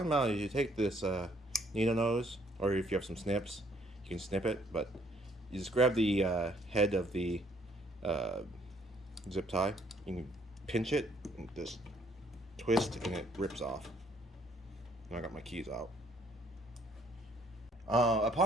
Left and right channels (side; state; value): both; normal; correlation 0.64